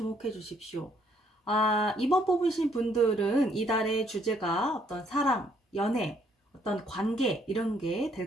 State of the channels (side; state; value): both; normal; correlation 0.67